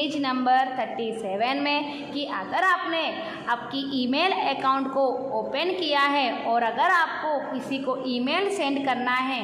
नंबर 37 में कि अगर आपने आपकी ईमेल अकाउंट को ओपन किया है और अगर आपको किसी को ईमेल सेंड करना है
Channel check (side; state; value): both; identical; correlation 1.00